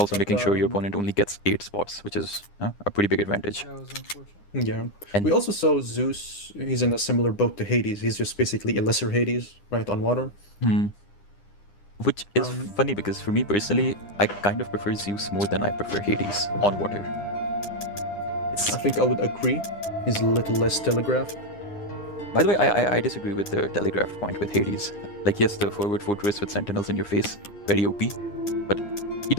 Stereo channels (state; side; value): late; right; 9.9 ms